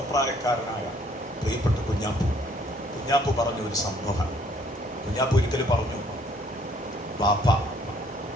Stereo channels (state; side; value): normal; both; correlation 0.62